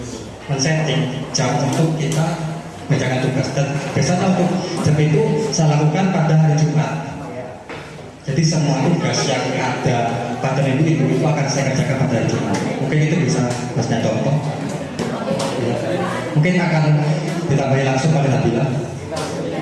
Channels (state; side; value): identical; both; correlation 1.00